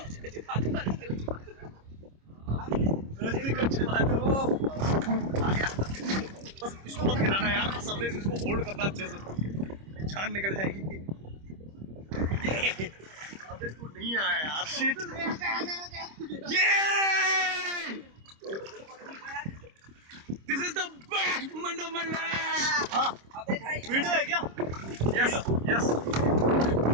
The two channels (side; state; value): left; late; 26 ms